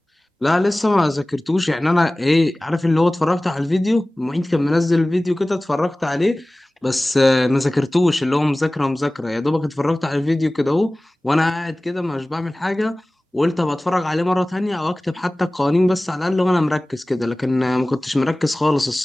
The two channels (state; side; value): normal; both; correlation 0.98